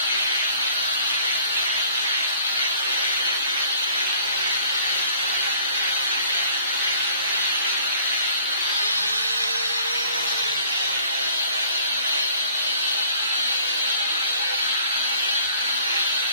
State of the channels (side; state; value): both; inverted; correlation -0.53